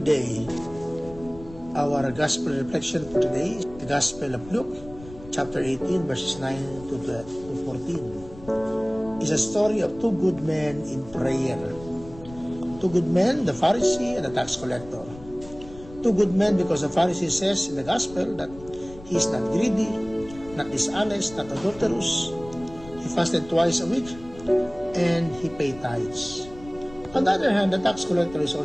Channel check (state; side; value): noise; left; rumble, 18 dB below the sound